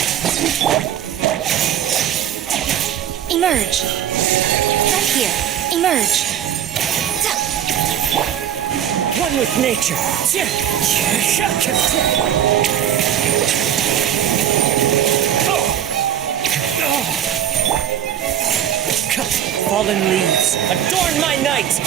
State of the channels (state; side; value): quieter; left; 10.2 dB